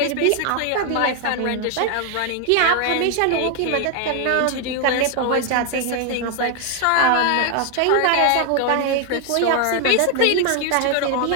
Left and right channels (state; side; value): different; both; correlation 0.00